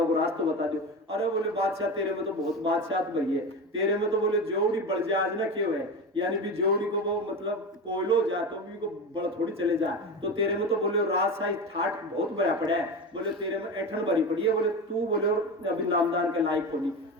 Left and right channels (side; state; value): both; normal; correlation 0.24